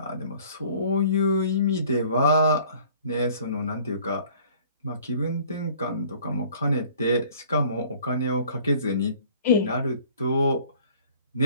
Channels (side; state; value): both; inverted; correlation -0.53